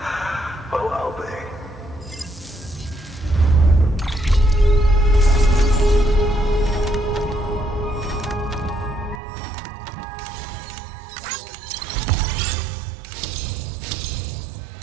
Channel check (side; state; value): left; drops out; at 9.2 s